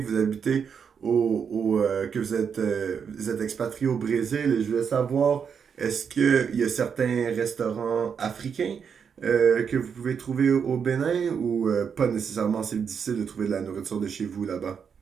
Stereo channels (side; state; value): left; quieter; 6.8 dB